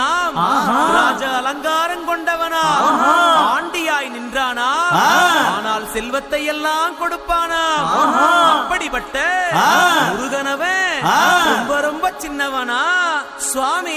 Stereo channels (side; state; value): both; identical; correlation 1.00